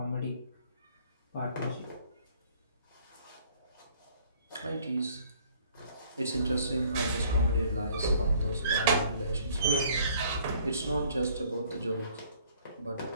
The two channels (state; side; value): inverted; both; correlation -0.59